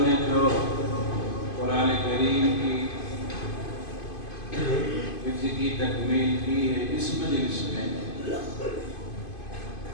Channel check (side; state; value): right; late; 2.5 ms